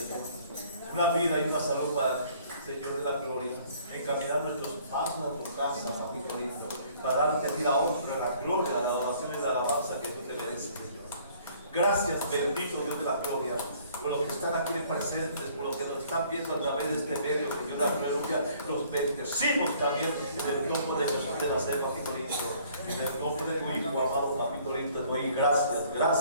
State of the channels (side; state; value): both; inverted; correlation -0.58